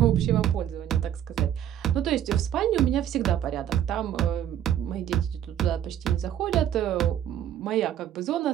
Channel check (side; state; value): left; quieter; 10.7 dB